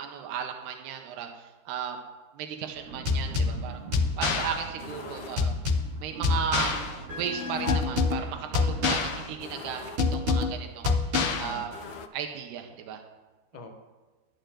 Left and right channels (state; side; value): late; left; 12 ms